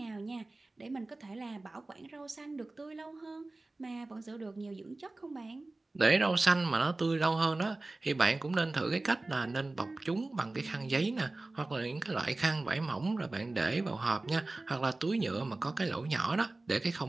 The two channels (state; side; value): quieter; left; 3.1 dB